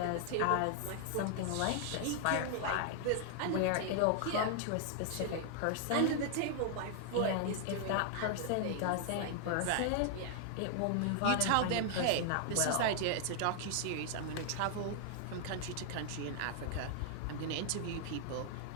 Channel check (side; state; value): both; different; correlation 0.00